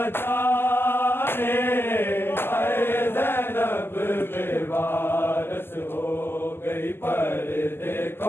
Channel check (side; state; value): right; late; 0.11 ms